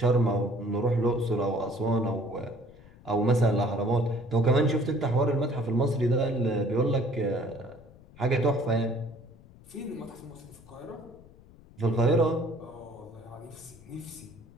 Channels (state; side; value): noise; left; rumble, 23 dB below the sound